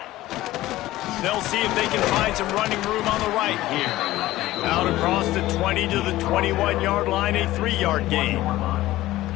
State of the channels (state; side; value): quieter; right; 16.3 dB